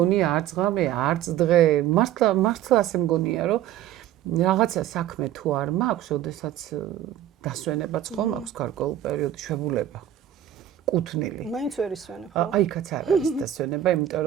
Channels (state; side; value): quieter; left; 11.6 dB